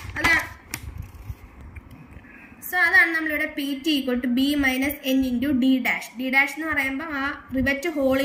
അതാണ് നമ്മളിവിടെ P T equal to B minus N into D dash. D dash എന്ന് പറയുമ്പോൾ ആ റിവറ്റ്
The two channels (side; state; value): both; identical; correlation 1.00